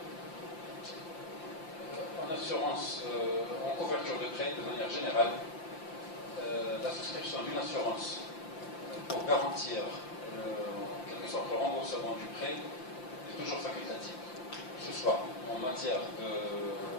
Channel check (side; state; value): right; late; 5.8 ms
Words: en assurance, en couverture de prêt, de manière générale, la souscription d'une assurance pour garantir en quelque sorte le remboursement du prêt est toujours facultative, que ce soit en matière de